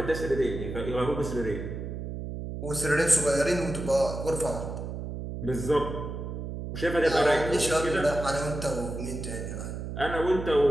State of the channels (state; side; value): noise; right; hum, 6 dB below the sound